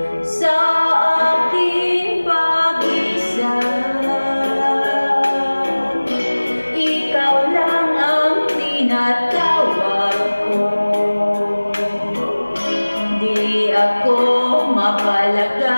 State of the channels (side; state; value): both; inverted; correlation -1.00